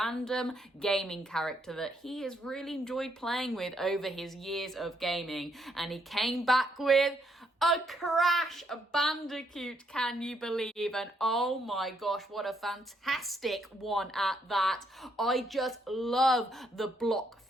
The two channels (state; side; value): normal; both; correlation 0.74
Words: gaming character that he has really enjoyed playing with over his years of gaming, and he came back with a Crash Bandicoot, can you believe? And oh my gosh, what a fantastic one at that. I just love the block